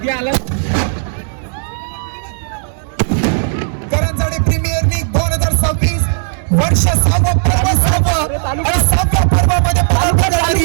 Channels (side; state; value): left; silent; digital silence